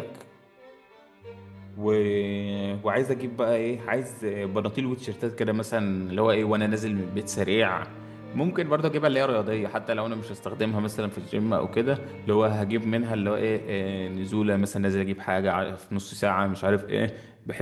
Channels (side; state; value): both; identical; correlation 1.00